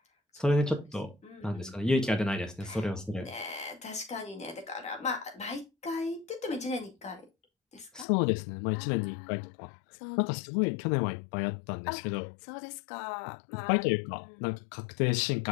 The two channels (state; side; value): drops out; right; at 8.1 s